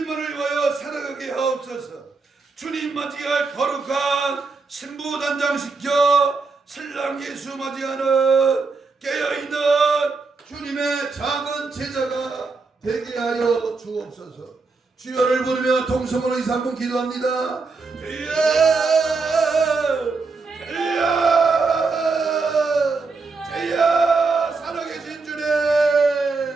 위하여 살아가게 하옵소서. 주님 맞이할 거룩한 신부 단장시켜 신랑 예수 맞이하는 깨어있는 주님의 작은 제자가 되게 하여 주옵소서. 주여를 부르며 통성으로 2-3분 기도합니다. 주여 주여 주여 살아계신 주님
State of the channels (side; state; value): left; quieter; 4.2 dB